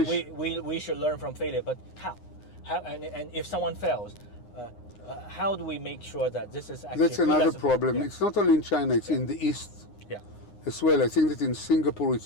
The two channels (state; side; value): late; right; 9.7 ms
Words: we should learn from failure, but how? And if someone fails, how do we make sure that this is actually... That's another problem. Yeah. It's not only in China, it's in the East as well. I think that in Singapore